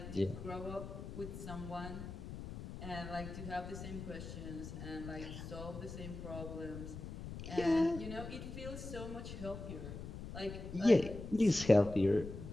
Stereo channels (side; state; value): left; noise; rumble, 9 dB below the sound